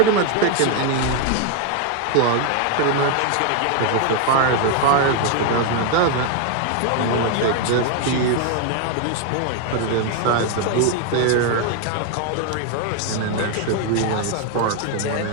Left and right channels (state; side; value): different; both; correlation 0.00